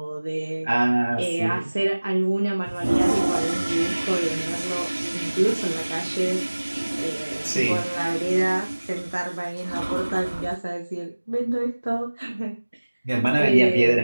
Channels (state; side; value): inverted; both; correlation -1.00